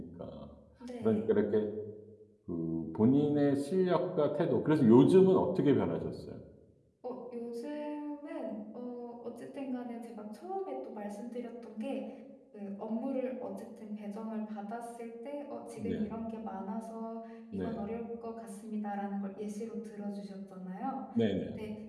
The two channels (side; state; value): both; identical; correlation 1.00